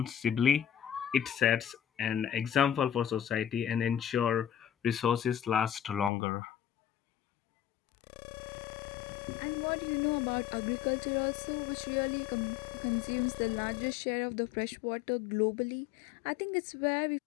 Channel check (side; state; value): right; drops out; at 6.1 s